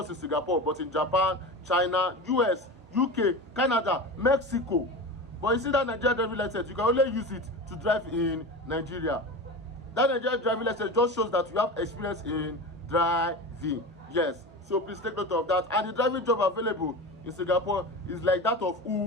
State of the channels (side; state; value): both; normal; correlation 0.28